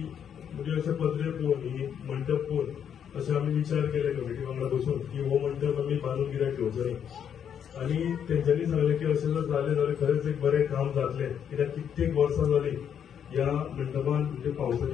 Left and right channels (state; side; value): quieter; right; 8.5 dB